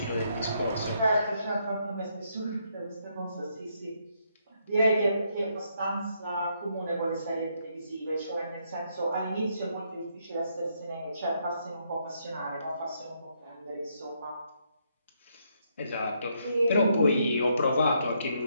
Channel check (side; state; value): both; inverted; correlation -0.75